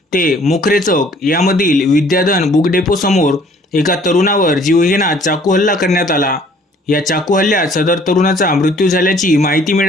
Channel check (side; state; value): both; normal; correlation 0.56